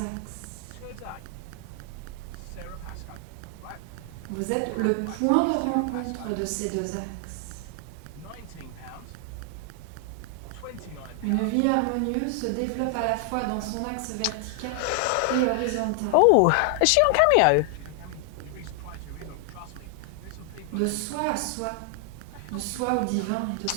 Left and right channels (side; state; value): both; different; correlation 0.00